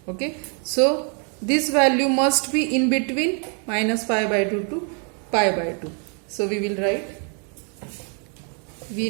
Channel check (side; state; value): left; quieter; 39.7 dB